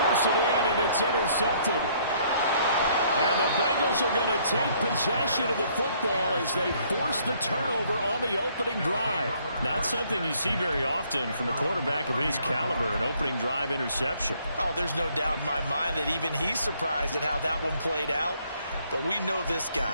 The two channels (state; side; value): inverted; both; correlation -0.65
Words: it in, and it's intercepted. And the Bengals are going to take possession of the football as they force the turnover on the opening drive. Not something you see very often from a quarterback of his caliber, an opening drive interception. Oh, there's no doubt in my mind that even he's surprised at how that one played out. But we know this